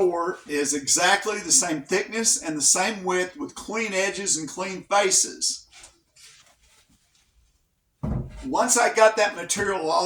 is exactly the same thickness and the same width with clean edges and clean faces. Once I got that material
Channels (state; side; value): identical; both; correlation 1.00